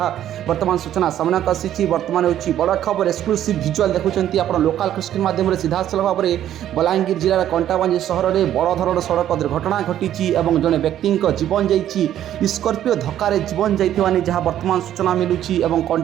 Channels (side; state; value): left; quieter; 11.4 dB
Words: वर्तमान सूचना सामना आसी। वर्तमान हूँ बड़ खबर एक्सक्लूसिव भिजुआल देखुंत आप लोकाल माध्यम सीधा सलख भाव में बलांगीर जिलार कंटाबांजी सहर में बड़ धरण सड़क दुर्घटना घटी। जड़े व्यक्ति जीवन जाइए स्कॉर्पियो धक्के जीवन जाइए जहाँ वर्तमान सूचना मिलूँ।